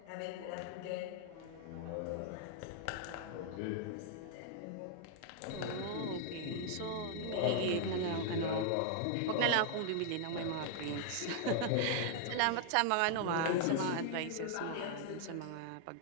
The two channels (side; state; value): both; different; correlation 0.00